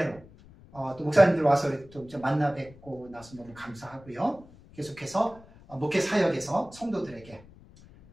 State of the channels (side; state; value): left; noise; rumble, 22 dB below the sound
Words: 또 목사님들 와서 또 만나 뵙고 나서 너무 감사하고요. 계속해서 목회 사역에서 성도들에게